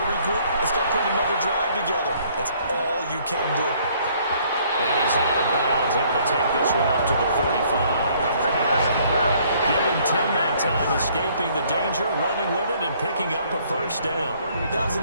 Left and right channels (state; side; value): inverted; both; correlation -0.62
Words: to regroup and start putting another drive together. That's all you can do. And he's out of bounds, able to take this route to the 35. Give him 10 that time, escaping the danger, running with it, and picking up a first down. That was an